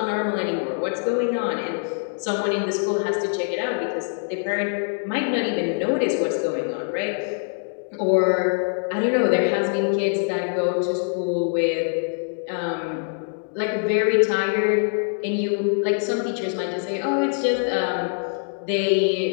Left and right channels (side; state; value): right; silent; 62 dB below the other